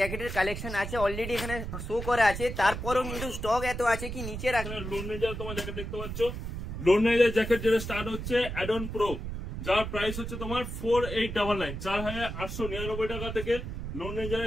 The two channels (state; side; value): noise; right; rumble, 6 dB below the sound